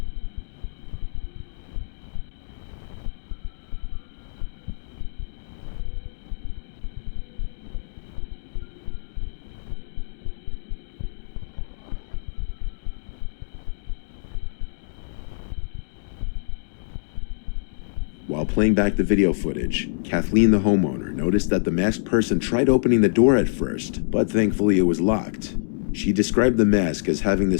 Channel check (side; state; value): right; silent; digital silence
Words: While playing back the video footage, Kathleen, the homeowner, noticed that the masked person tried opening the door at first, but thankfully it was locked. She described the mask as having